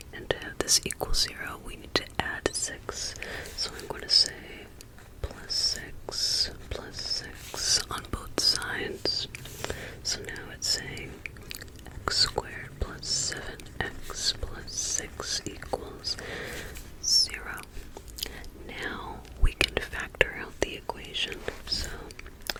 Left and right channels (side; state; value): both; identical; correlation 1.00